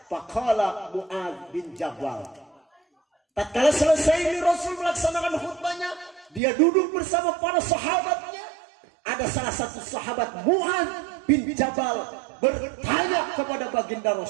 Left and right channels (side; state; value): left; drops out; at 6.4 s